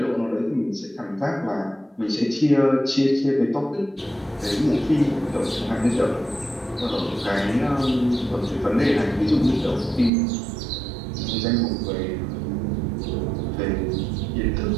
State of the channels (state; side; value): drops out; left; at 10.1 s